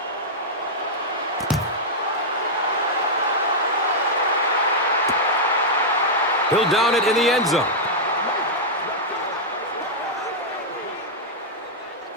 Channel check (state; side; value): normal; both; correlation -0.06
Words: He'll down it in the end zone.